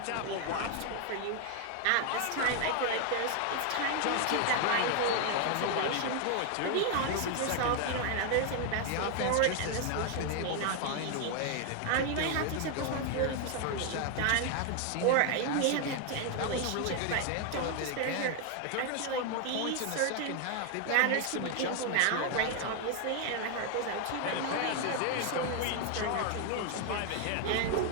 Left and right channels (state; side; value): different; both; correlation 0.01